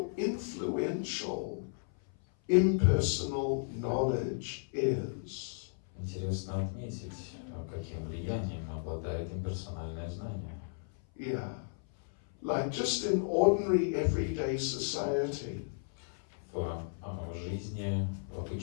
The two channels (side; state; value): right; silent; 55 dB below the other